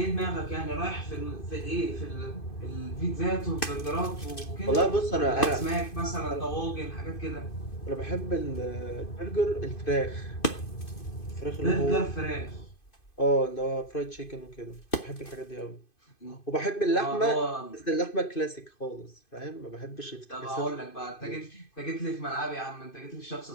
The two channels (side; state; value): right; late; 2.5 ms